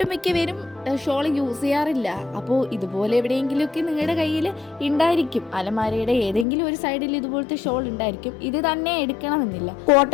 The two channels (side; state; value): right; drops out; at 6.5 s